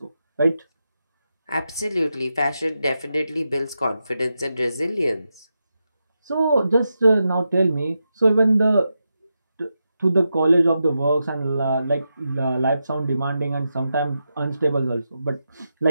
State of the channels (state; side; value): inverted; both; correlation -0.88